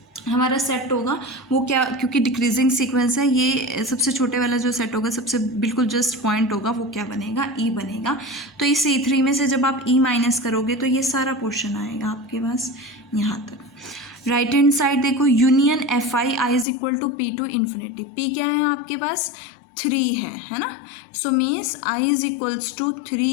हमारा सेट होगा वो क्या, क्योंकि डिक्रीजिंग सीक्वेंस है, ये सबसे छोटे वाला जो सेट होगा, सबसे बिल्कुल जस्ट पॉइंट होगा, वो क्या बनेगा, E बनेगा. तो इस E3 में से जब आप E माइनस करोगे तो ये सारा पोर्शन आएगा आपके पास यहाँ तक. राइट हैंड साइड देखो, union Fi I is equal to P to infinity. P क्या है आपके पास, 3 है ना. So means I is equals to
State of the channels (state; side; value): drops out; right; at 16.7 s